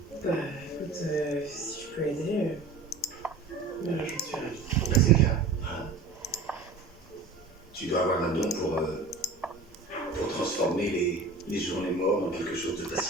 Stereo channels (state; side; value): quieter; left; 3.7 dB